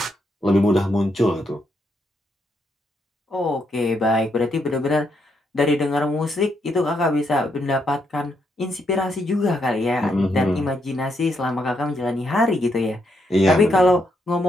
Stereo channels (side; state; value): both; normal; correlation 0.78